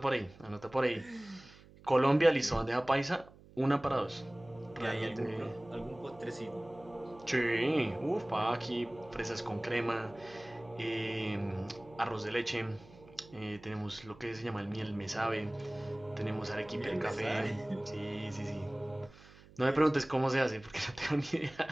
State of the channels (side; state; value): right; noise; hum, 22 dB below the sound